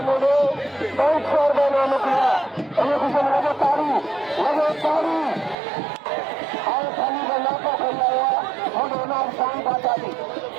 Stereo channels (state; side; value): drops out; left; at 5.6 s